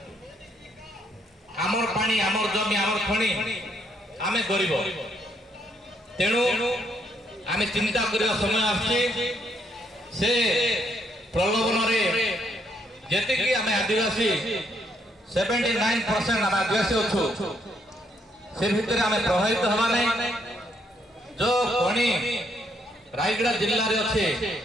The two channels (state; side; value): normal; both; correlation 0.72